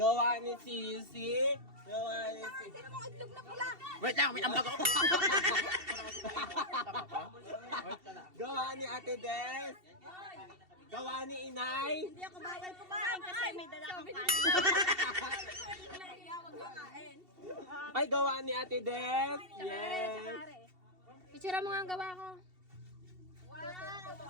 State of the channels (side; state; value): left; late; 2.7 ms